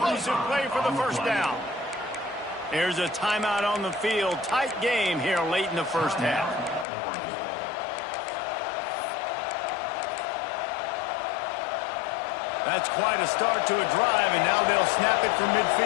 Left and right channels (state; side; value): drops out; right; at 6.9 s